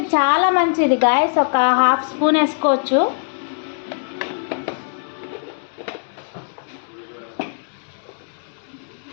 చాలా మంచిది గాయస్. ఒక 1/2 స్పూన్ వేసుకోవచ్చు.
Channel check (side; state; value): right; silent; digital silence